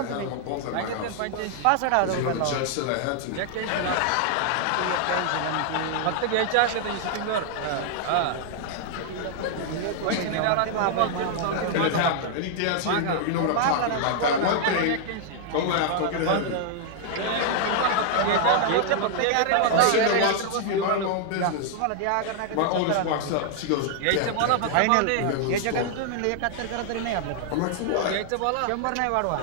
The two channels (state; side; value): different; both; correlation 0.00